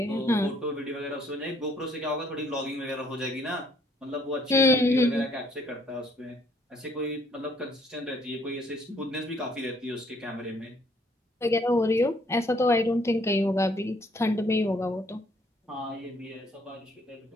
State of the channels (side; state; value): both; normal; correlation 0.65